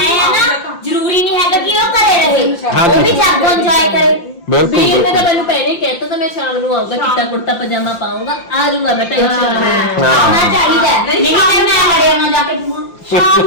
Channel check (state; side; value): late; right; 5.8 ms